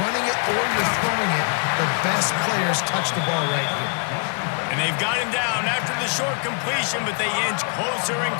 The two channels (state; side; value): quieter; right; 39.1 dB